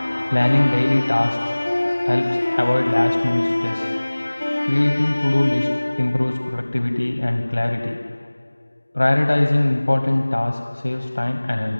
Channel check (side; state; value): both; inverted; correlation -1.00